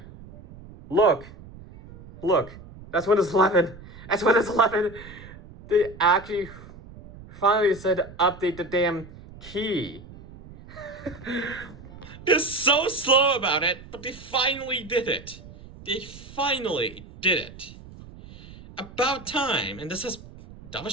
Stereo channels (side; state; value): right; noise; rumble, 18 dB below the sound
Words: Look, that's Windows 11. That's Windows 11. They actually finally said to update the damn key. They're so slow about it, but they finally did it. They finally did it. About time. And this has double